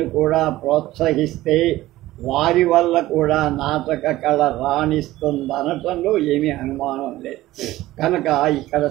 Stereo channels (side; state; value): left; quieter; 16.4 dB